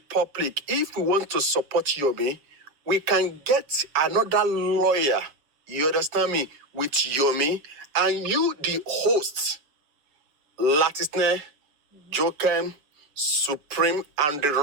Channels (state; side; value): late; left; 7.0 ms